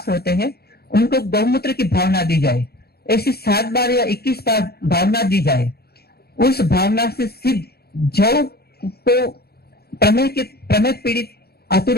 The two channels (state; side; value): late; right; 0.46 ms